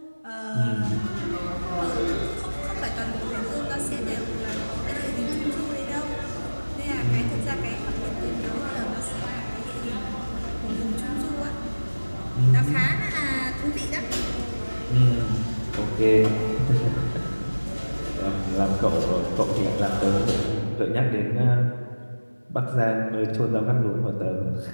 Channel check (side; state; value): both; inverted; correlation -1.00